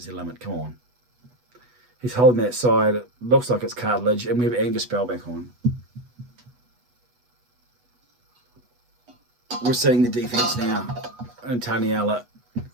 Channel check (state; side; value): late; left; 8.2 ms